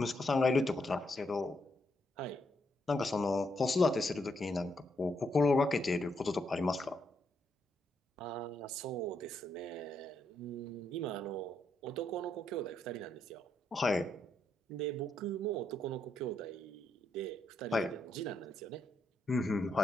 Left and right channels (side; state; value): both; normal; correlation 0.78